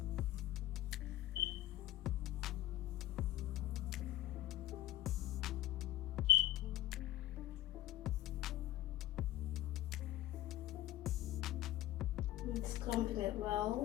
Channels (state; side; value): quieter; right; 14.7 dB